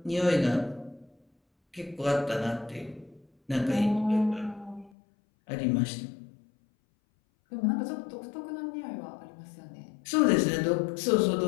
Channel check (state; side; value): drops out; right; at 4.9 s